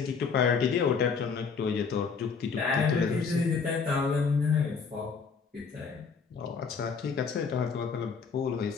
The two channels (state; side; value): quieter; right; 5.5 dB